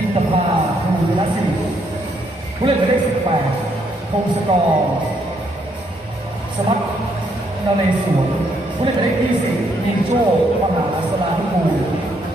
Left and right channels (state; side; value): normal; both; correlation 0.73